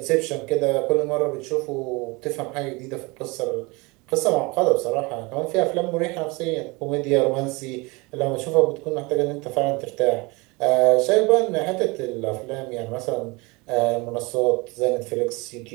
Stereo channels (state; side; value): quieter; left; 26.0 dB